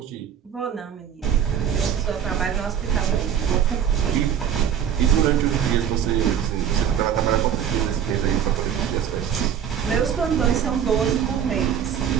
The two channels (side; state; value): left; quieter; 8.9 dB